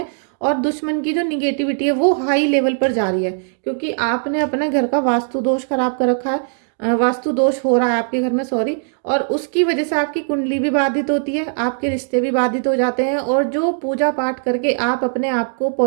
और दुश्मन की जो निगेटिविटी है वो हाई लेवल पर जा रही है, क्योंकि आपने अपने घर का वास्तु दोष खराब कर रखा है, वास्तु दोष हो रहा है आपके घर में, सॉरी, और उसकी वजह से आपकी कुंडली भी बाधित होती है, आपके रिश्ते भी बाधित हो जाते हैं, और जो पूजा पाठ करके आप अपने आप को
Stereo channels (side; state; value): left; silent; digital silence